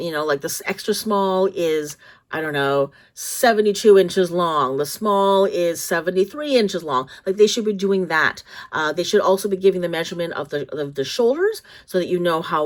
this extra small is, I don't know, 72 inches long. The small is 73 inches long. They should be doing that. They should also be giving the measurement of the shoulders, so that you know how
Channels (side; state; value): both; identical; correlation 1.00